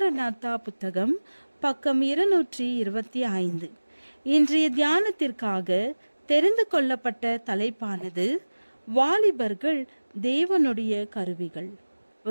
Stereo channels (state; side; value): inverted; both; correlation -1.00